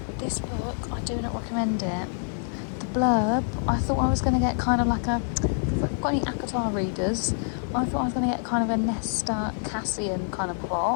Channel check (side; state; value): right; silent; digital silence